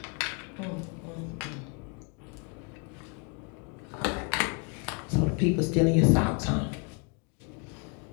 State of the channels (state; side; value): quieter; right; 34.1 dB